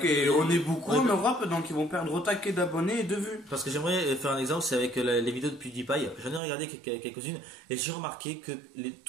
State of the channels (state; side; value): drops out; left; at 6.4 s